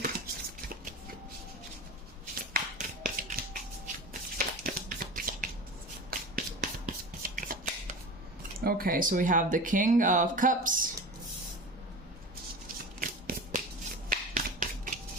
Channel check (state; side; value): normal; both; correlation 0.32